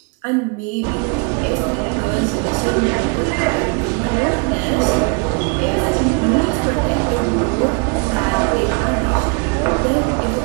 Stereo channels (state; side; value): quieter; left; 33.6 dB